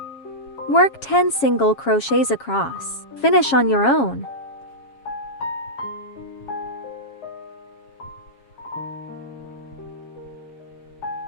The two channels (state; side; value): late; right; 7.3 ms